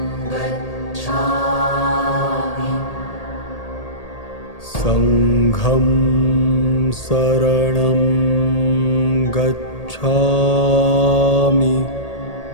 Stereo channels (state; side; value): late; right; 1.8 ms